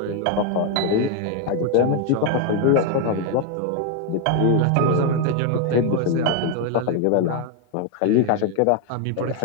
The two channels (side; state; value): both; different; correlation 0.01